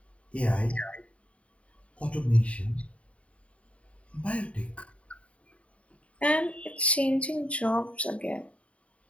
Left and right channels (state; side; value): late; right; 0.064 ms